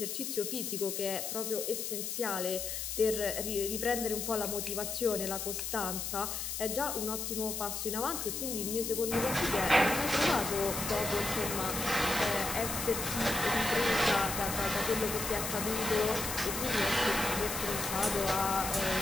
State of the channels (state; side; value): noise; left; hiss, 4 dB below the sound